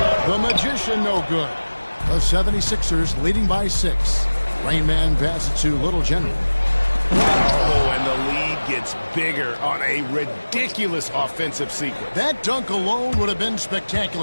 The Magician, no good. The 76ers leading by 6. Rain Man passes to Little General. Oh, and the lead gets bigger on a ridiculous offensive sequence. That dunk alone would have been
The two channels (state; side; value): inverted; both; correlation -1.00